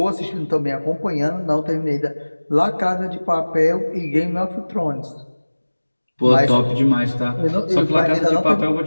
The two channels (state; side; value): inverted; both; correlation -1.00